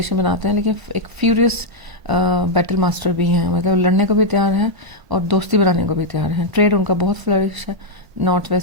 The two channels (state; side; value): late; left; 1.0 ms